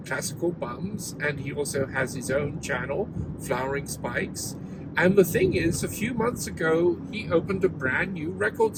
Bums, and he also has his own channel, Flowering Spikes. And the thing is, a few months ago, he opened a brand new record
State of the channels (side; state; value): both; identical; correlation 1.00